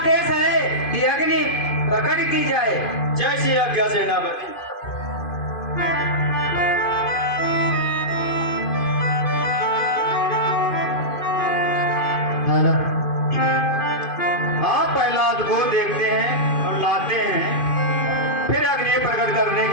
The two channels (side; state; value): right; late; 2.5 ms